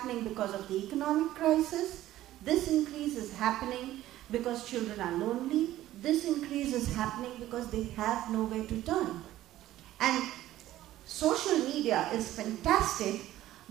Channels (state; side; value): quieter; left; 14.3 dB